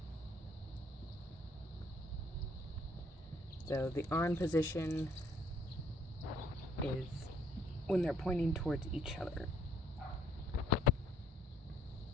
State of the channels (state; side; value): normal; both; correlation 0.63